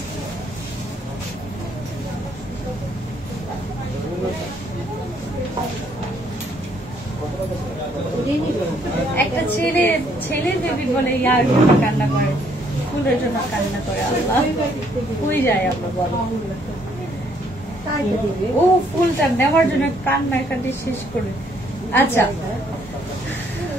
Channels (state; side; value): normal; both; correlation 0.67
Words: একটা ছেলের বেবি বলে ইয়ার জন্য কান্না করে, ফুলের জন্য কান্না করে। আল্লাহ হয়ে যায় আমরা বলো, ও ফুলটা নেওয়ার জন্য কান্নাকাটি শেষ করে। আচ্ছা,